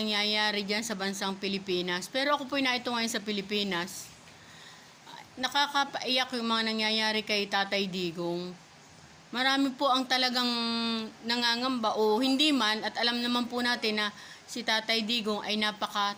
dyan sa bansang Pilipinas. Pero ako po naito ngayon sa Pilipinas. Nakakapaiyak yung mga nangyayari kay Tatay Digong. Marami po ang talagang nangangamba o hindi man, at alam naman po natin na si Tatay Digong ay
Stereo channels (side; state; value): both; identical; correlation 1.00